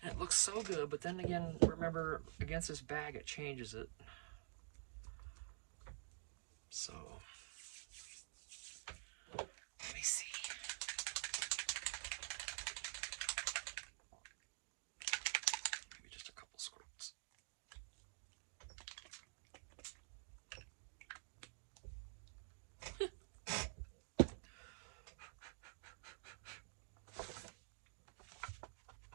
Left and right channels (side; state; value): left; silent; digital silence